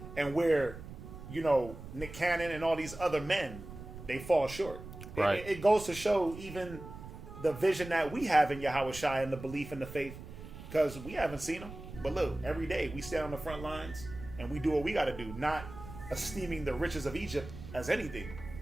And where, Nick Cannon and all these other men, they fall short. Right. It goes to show even the vision that we have in Yahweh Shai and the belief in the faith, because we haven't seen him. But look, every day we stand on the front lines and we do what we got to do, not esteeming the riches of Egypt as anything.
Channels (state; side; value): noise; right; rumble, 13 dB below the sound